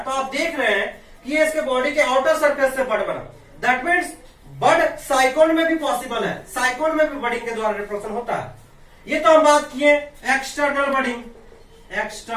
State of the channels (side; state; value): both; identical; correlation 1.00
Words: तो आप देख रहे हैं कि ये इसके बॉडी के आउटर सरफेस से बड बना, दैट मीन्स बड साइकोन में भी पॉसिबल है, साइकोन में भी बडिंग के द्वारा रिप्रोडक्शन होता है। ये तो हम बात किए एक्सटर्नल बडिंग,